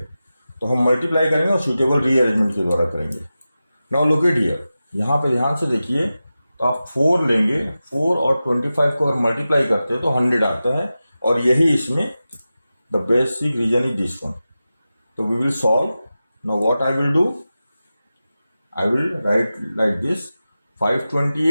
तो हम मल्टीप्लाई करेंगे और सूटेबल रीअरेंजमेंट के द्वारा करेंगे। नाउ लुक एट हियर, यहाँ पे ध्यान से देखिए, तो आप 4 लेंगे, 4 और 25 को अगर मल्टीप्लाई करते हैं तो 100 आता है, और यही इसमें the basic reason is this one. तो we will solve. Now what I will do, I will write like this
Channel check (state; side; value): inverted; both; correlation -0.94